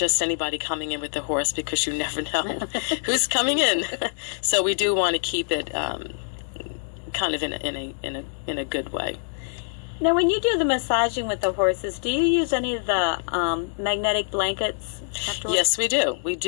anybody coming in with the horse, because you never know who's coming in. So we do want to keep it kind of in a good way. Now, when you do the massaging with the horses, do you use any of the magnetic blankets afterwards? Yes, we do. We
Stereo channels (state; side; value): silent; right; 62 dB below the other